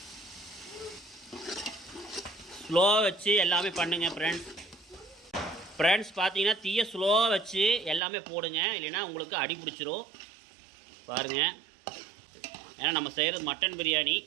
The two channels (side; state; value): left; drops out; at 8.0 s